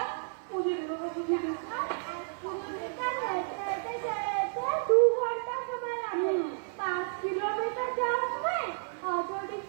বুঝিয়ে দেবো, বুঝিয়ে দেবো। 1 কিলোমিটার হেঁটে হেঁটে যেতে 2 ঘন্টা সময় লাগে। 5 কিলোমিটার যাওয়ার সময় অটো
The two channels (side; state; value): left; silent; 57 dB below the other